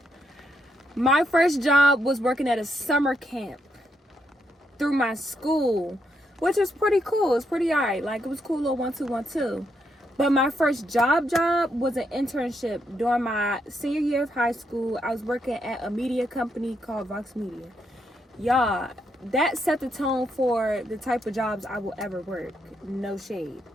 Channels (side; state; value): both; normal; correlation 0.78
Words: My first job was working at a summer camp through my school, which was pretty cool. It was pretty alright. Like, it was cool, little 1-2-1-2. But my first job was an internship during my senior year of high school. I was working at a media company called Vox Media. Y'all, that set the tone for the type of jobs I will ever work. No shade.